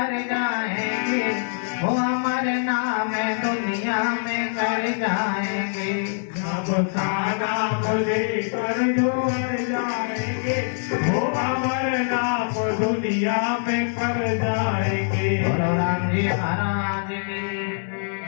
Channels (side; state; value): right; silent; digital silence